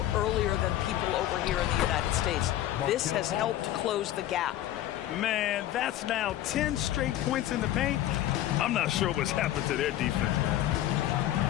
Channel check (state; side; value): quieter; right; 13.3 dB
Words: earlier than people over here in the United States. This has helped close the gap. Man, that's now 10 straight points in the paint. I'm not sure what's happened to their defense, man.